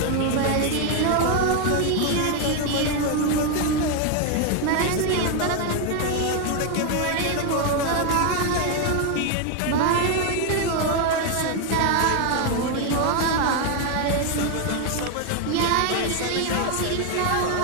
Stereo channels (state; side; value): different; both; correlation 0.01